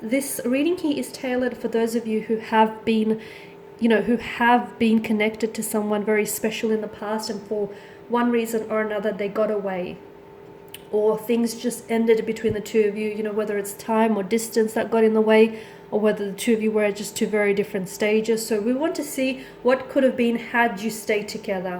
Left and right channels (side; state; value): both; identical; correlation 1.00